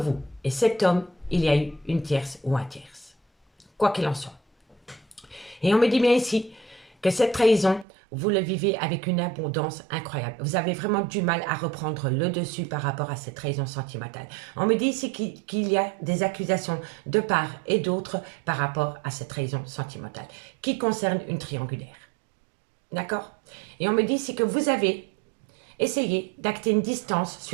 et cet homme, il y a eu une tierce ou un tierce. Quoi qu'il en soit. Et on me dit bien ici que cette trahison, vous le vivez avec une abondance incroyable. Vous avez vraiment du mal à reprendre le dessus par rapport à cette trahison sentimentale. On me dit ici qu'il y a des accusations de part et d'autre par rapport à cette trahison sentimentale qui concerne une triangulaire. D'accord? Et on me dit ici que vous avez essayé d'acter une distance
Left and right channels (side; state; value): left; drops out; at 7.9 s